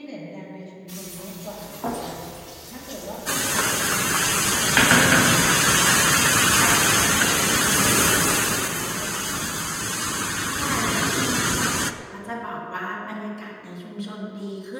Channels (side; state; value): both; identical; correlation 1.00